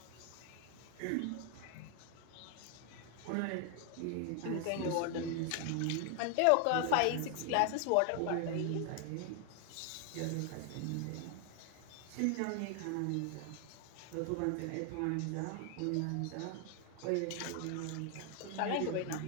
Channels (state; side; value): different; both; correlation 0.00